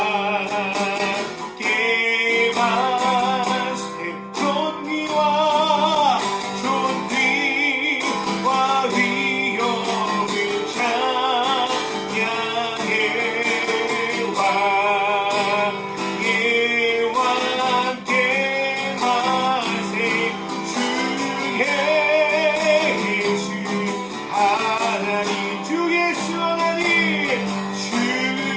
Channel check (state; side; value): identical; both; correlation 1.00